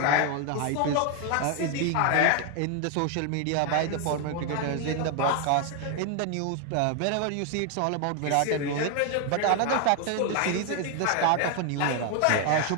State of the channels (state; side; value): different; both; correlation 0.01